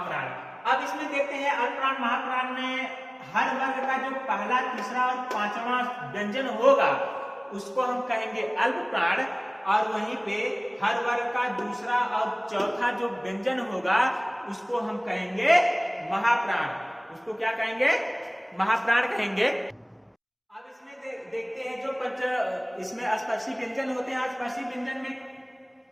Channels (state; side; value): identical; both; correlation 1.00